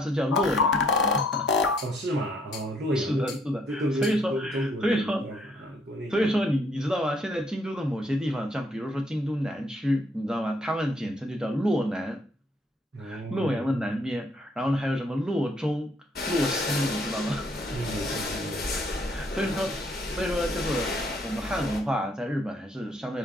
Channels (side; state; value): both; normal; correlation 0.67